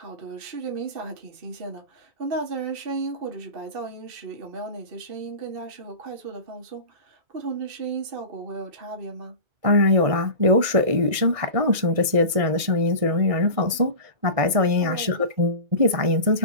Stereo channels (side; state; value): left; late; 1.6 ms